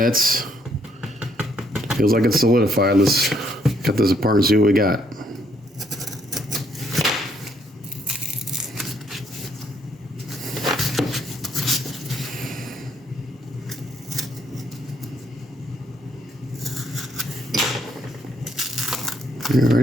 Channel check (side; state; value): both; normal; correlation 0.70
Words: Feels like it's solidified. Let's cut this apart and see what we got.